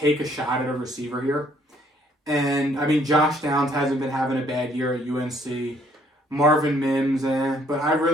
a shot at a receiver here. And, I mean, Josh Downs hasn't been having a bad year at UNC. Marvin Mims, but I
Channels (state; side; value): normal; both; correlation 0.65